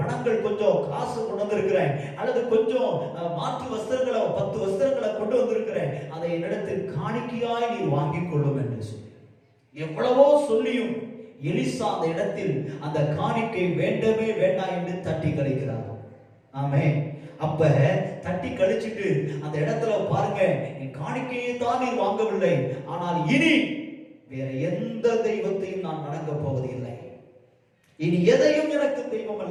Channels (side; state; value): both; identical; correlation 1.00